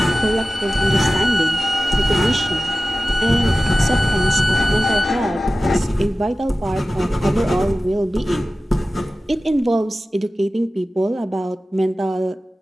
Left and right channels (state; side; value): normal; both; correlation 0.95